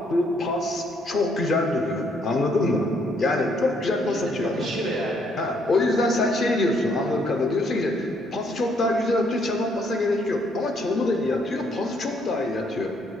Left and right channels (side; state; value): both; normal; correlation 0.69